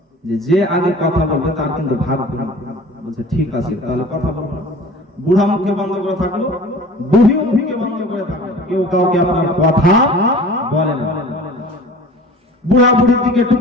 যে আগে কথা বলবে তার কিন্তু ভাগ হবে। বলছে ঠিক আছে, তাহলে কথা বলবো। বুড়া মুখে বন্ধ করে থাকলো, বুড়ি মুখে বন্ধ করে থাকলো, কেউ কাউকে আপনার কথা বলে না। বুড়া বুড়ির দিকে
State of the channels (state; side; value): normal; both; correlation 0.43